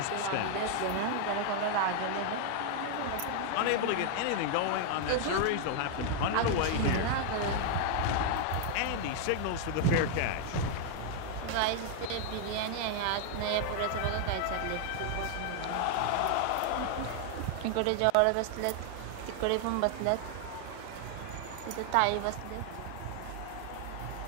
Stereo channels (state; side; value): different; both; correlation 0.00